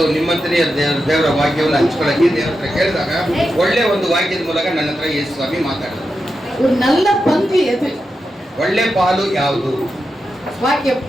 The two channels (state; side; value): normal; both; correlation 0.89